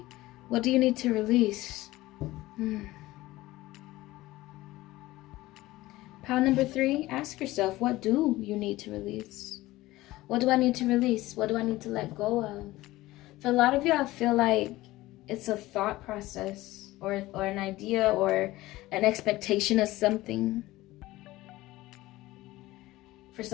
What do you need to release? Pile number 3, ask yourself, what do you need to release? What do I need to release? What do I need to let go of? For a lot of you, I feel like it's a thought process or an idea or an expectation of something. For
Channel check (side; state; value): right; quieter; 17.9 dB